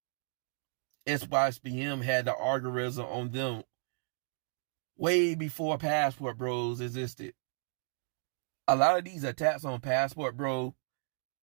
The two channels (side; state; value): left; silent; 56 dB below the other